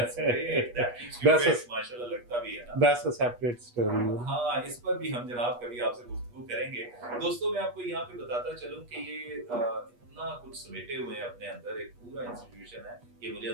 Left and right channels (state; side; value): late; left; 8.3 ms